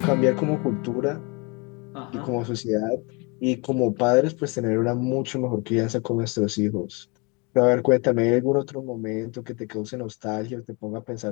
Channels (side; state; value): right; quieter; 30.2 dB